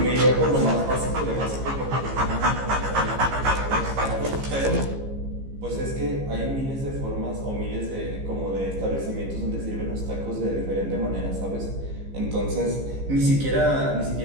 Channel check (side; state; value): left; late; 15 ms